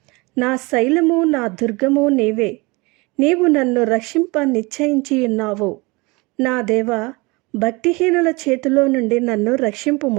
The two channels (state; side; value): quieter; left; 25.4 dB